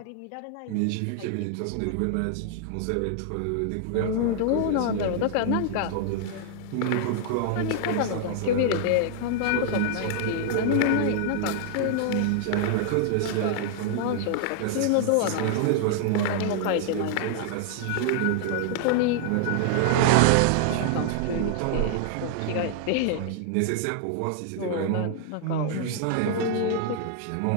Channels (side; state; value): both; different; correlation -0.01